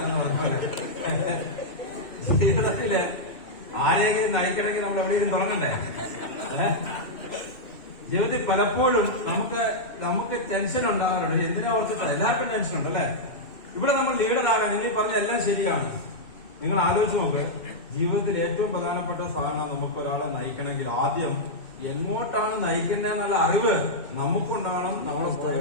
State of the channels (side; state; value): right; late; 2.6 ms